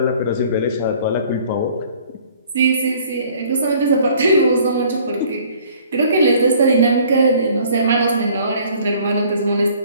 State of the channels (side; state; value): both; inverted; correlation -0.55